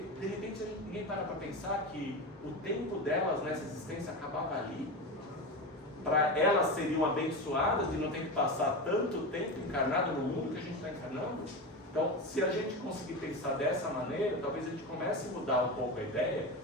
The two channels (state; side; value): normal; both; correlation 0.22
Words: repente ninguém para pensar que o tempo delas nessa existência acabava ali. Para elas seriam abençoadas de não ter que passar tanto tempo encarnado no mundo que a gente está encarnando. Então, se a gente conseguir pensar dessa maneira, talvez a gente comece a mudar um pouco a ideia,